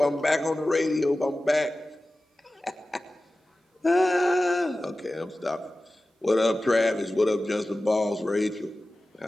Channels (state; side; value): normal; both; correlation 0.96